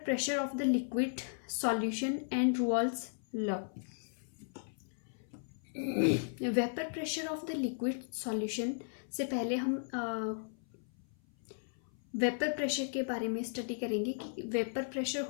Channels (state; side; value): silent; right; 54 dB below the other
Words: pressure of the liquid solution and Raoult's law. Vapour pressure of the liquid solution से पहले हम वेपर प्रेशर के बारे में स्टडी करेंगे कि वेपर प्रेशर